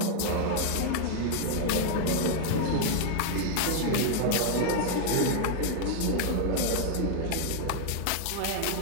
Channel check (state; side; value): different; both; correlation 0.00